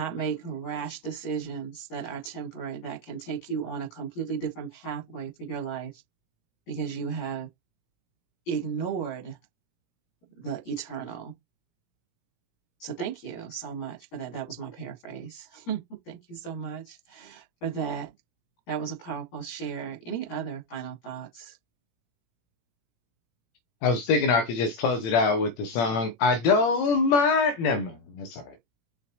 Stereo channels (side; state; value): right; late; 17 ms